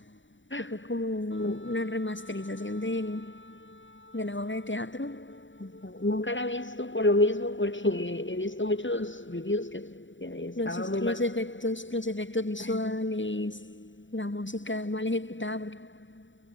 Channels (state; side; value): late; right; 0.55 ms